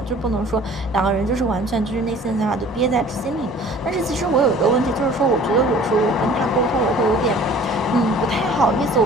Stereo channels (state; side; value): normal; both; correlation 0.49